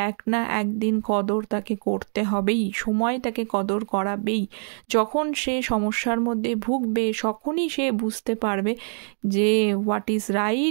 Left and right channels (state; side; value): silent; left; digital silence